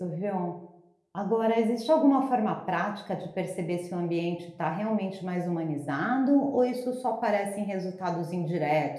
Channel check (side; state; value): both; identical; correlation 1.00